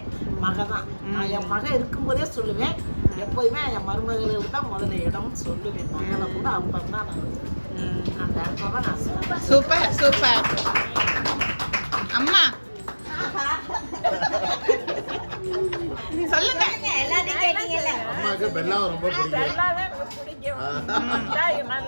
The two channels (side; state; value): both; inverted; correlation -1.00